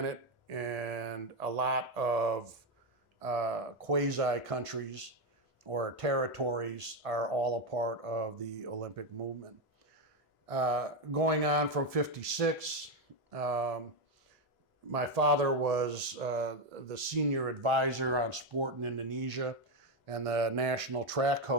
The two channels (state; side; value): normal; both; correlation 0.07